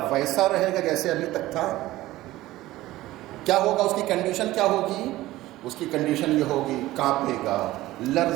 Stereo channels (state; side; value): quieter; left; 16.8 dB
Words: ویسا رہے گا جیسے ابھی تک تھا؟ کیا ہوگا اس کی کنڈیشن؟ کیا ہوگی اس کی کنڈیشن؟ یہ ہوگی کانپے گا،